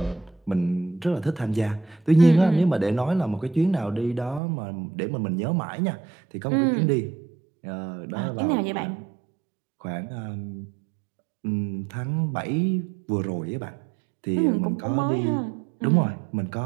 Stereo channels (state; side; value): drops out; left; at 4.4 s